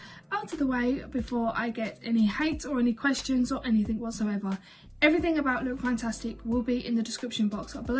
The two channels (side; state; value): both; identical; correlation 1.00